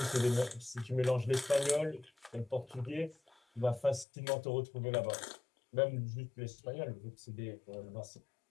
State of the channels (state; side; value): drops out; right; at 4.0 s